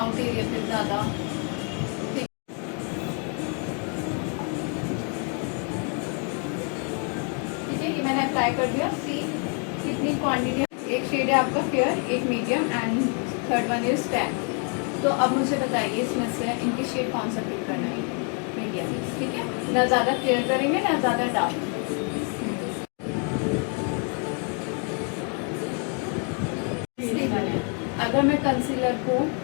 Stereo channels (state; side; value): quieter; right; 38.9 dB